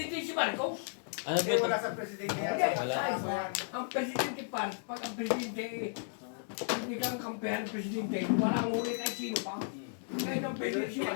si Marcos. Ano Eh, wala sa presidente yan. Hindi, Wala. ang presidente pa, pag ang presidente, hindi kang kampihan ng presidente, walang ulit ay sino pa. Kahit ang presidente si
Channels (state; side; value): silent; right; digital silence